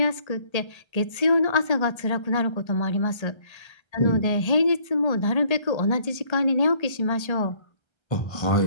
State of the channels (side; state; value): right; late; 1.3 ms